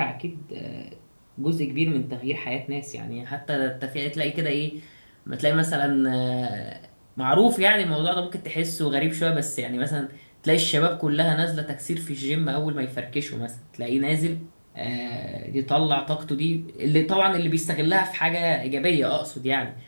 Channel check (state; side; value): inverted; both; correlation -1.00